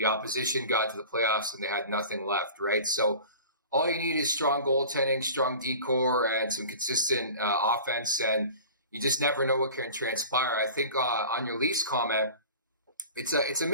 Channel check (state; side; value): inverted; both; correlation -0.40